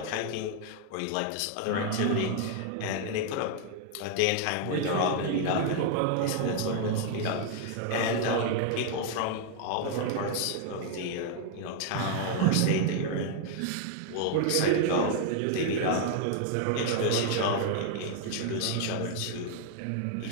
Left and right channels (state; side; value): different; both; correlation 0.00